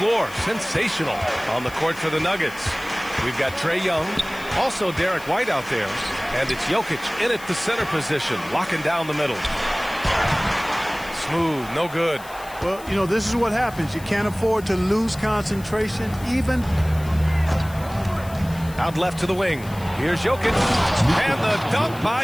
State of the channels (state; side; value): noise; left; hiss, 19 dB below the sound